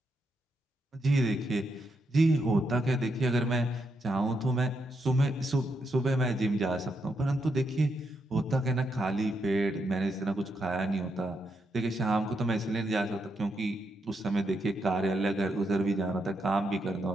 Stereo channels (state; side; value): normal; both; correlation 0.81